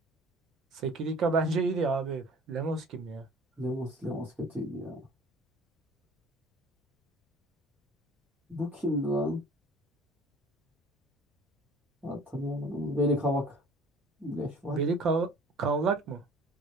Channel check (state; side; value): normal; both; correlation 0.48